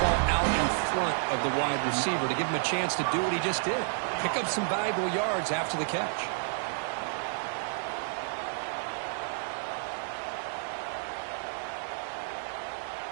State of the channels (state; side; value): silent; left; 57 dB below the other